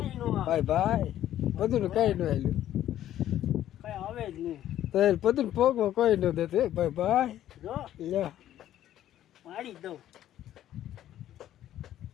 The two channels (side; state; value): right; quieter; 12.2 dB